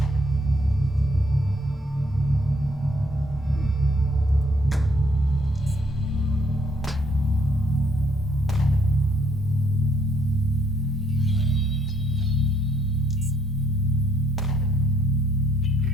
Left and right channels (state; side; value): normal; both; correlation 0.68